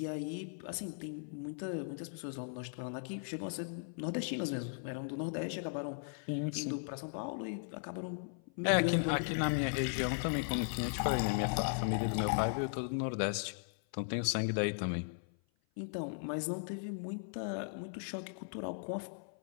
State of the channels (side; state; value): right; silent; 53 dB below the other